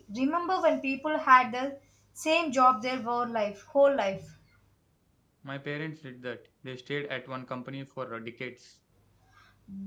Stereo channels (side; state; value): both; identical; correlation 1.00